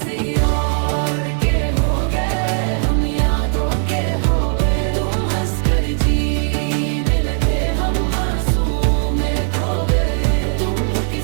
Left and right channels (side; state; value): left; silent; 58 dB below the other